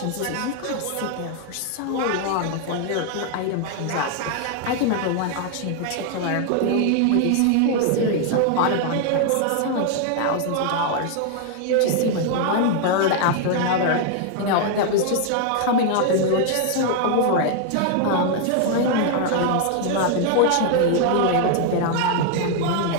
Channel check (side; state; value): both; different; correlation 0.00